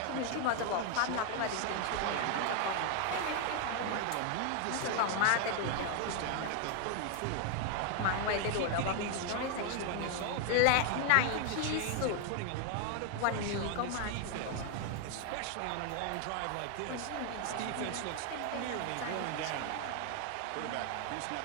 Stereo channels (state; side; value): different; both; correlation 0.00